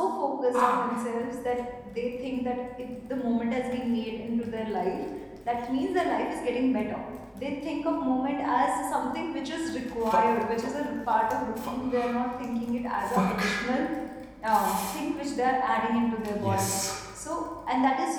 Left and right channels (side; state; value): both; identical; correlation 1.00